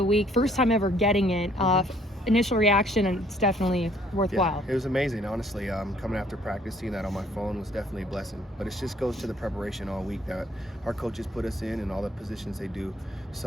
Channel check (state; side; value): normal; both; correlation 0.62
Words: week. First time ever getting it. Initial reaction, and it's definitely worthwhile. Yeah, it was amazing, honestly. Coming after practice, seeing that on my phone was definitely a blessing. But it just goes to the preparation all week that our coaches put us in and all the positions they do.